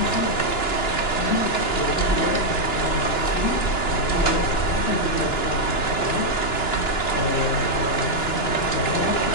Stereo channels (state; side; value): late; right; 2.9 ms